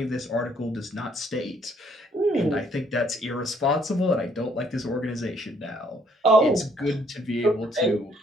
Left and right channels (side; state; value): both; normal; correlation 0.66